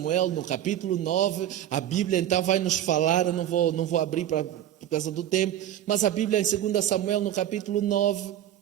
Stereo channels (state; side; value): quieter; left; 11.5 dB